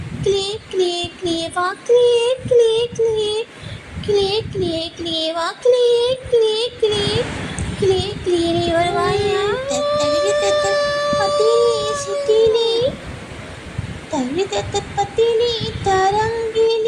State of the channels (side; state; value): both; identical; correlation 1.00